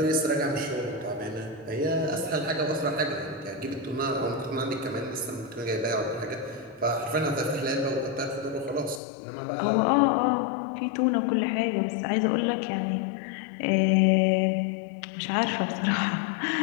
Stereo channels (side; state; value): right; drops out; at 9.0 s